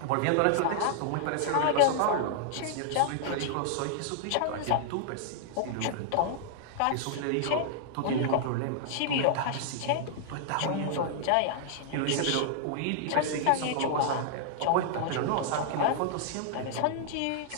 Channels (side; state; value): both; different; correlation -0.01